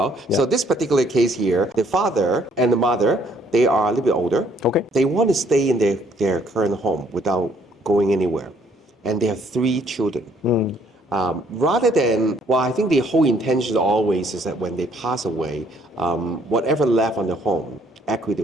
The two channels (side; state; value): both; normal; correlation 0.64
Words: Yeah. So this particular case here, the father and the mother, they are a little bit older. Okay. They want to stay in their current home without going anywhere. And they have 3 children. Rather than, well, I think the whole intention always is that when they pass away, whatever left on the home,